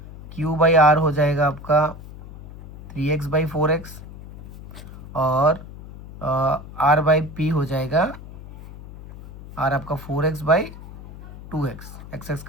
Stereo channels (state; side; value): noise; left; hum, 15 dB below the sound